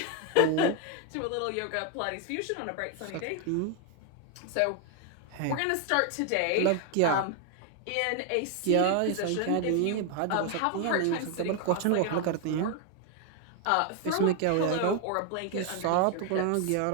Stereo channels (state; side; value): different; both; correlation 0.01